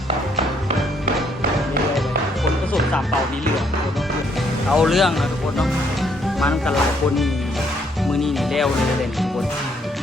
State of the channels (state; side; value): normal; both; correlation 0.69